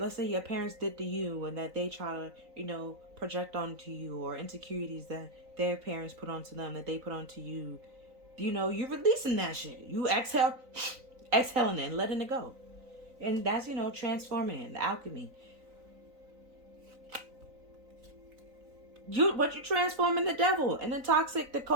parents did to you, and that they try to, you know, project onto you, or insecurities that their parents put onto them, that they put onto you, you're releasing that shit. You exhaling it and letting it go. And that's, transforming it, the alchemy. What you transforming the devil and the toxic, the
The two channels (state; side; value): late; left; 3.9 ms